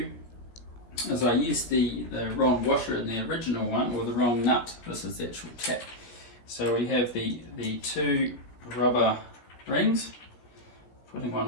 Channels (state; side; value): late; right; 17 ms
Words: as I used the wrong washer in the original one, or the wrong nut. This is the actual tap. So we have the 2 rubber rings. Putting one